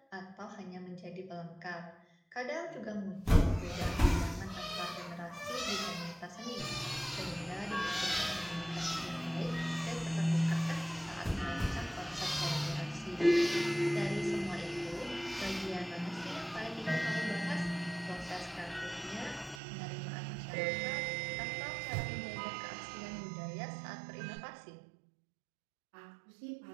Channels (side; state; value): left; drops out; at 19.6 s